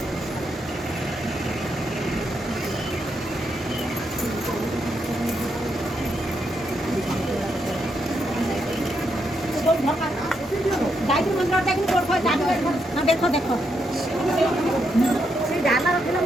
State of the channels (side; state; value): both; normal; correlation 0.80